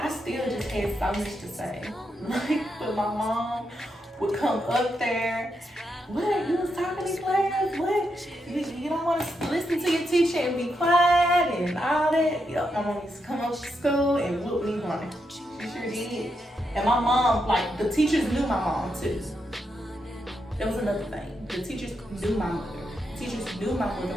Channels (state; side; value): normal; both; correlation 0.83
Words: still just had so much to say. Like, but my mom would come up there. What? You was talking in class? What? You don't want to listen to your teacher and be quiet and all that? Yep, my mom used to come up to school and whoop me running. She sure did. And my mom, like, the teachers knew my mom too. That was another thing. The teachers knew my mother. Teachers knew my mother